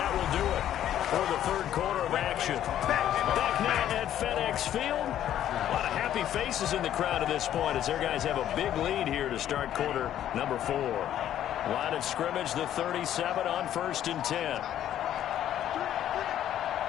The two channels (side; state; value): right; quieter; 11.3 dB